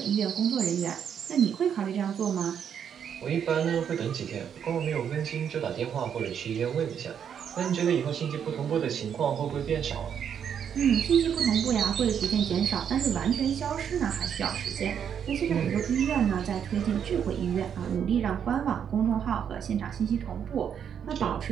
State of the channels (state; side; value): quieter; left; 8.2 dB